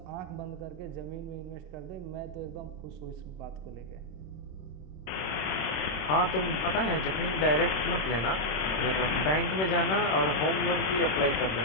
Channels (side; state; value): right; late; 26 ms